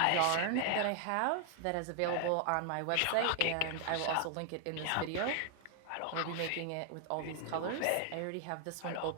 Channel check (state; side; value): different; both; correlation 0.00